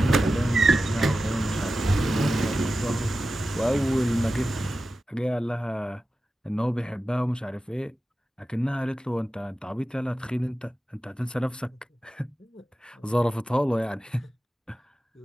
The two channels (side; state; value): both; normal; correlation 0.93